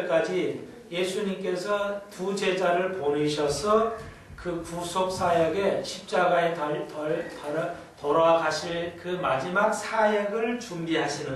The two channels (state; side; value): identical; both; correlation 1.00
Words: 예수님께서 두 제자를 보내셔서 그 구속사역에 십자가에 돌아가실 그 마지막 사역을 준비하시는